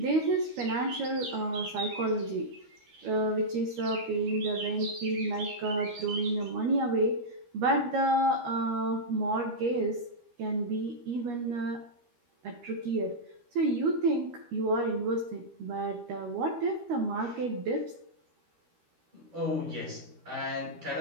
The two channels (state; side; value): late; left; 13 ms